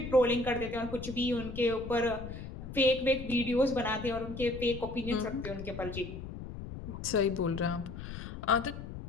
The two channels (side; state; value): left; noise; rumble, 9 dB below the sound